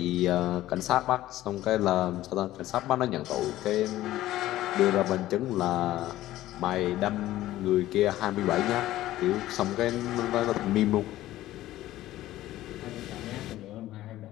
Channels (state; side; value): quieter; right; 15.0 dB